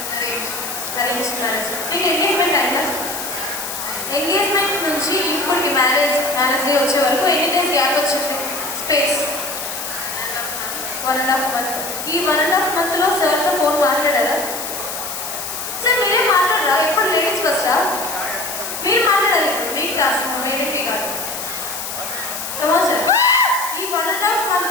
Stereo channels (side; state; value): left; noise; hiss, 6 dB below the sound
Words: arrange marriage మీకు ఎంగేజ్మెంట్ అయిందా ఎంగేజ్మెంట్ నుంచి ఇప్పటికి మ్యారేజ్ డే వచ్చే వరకు ఎన్ని డేస్ గ్యాప్ వచ్చింది స్పేస్ 1.5 month ఈ 1.5 monthలో సార్తో ఫోన్ మాట్లాడారా సార్ మీరే మాట్లాడరా ఎప్పుడు లేడీస్ ఫస్టా మీరు మాట్లాడాలి ఇప్పుడు మీకు టాస్క్ మేడంకి కాదు కమా సార్ ఈ 1.5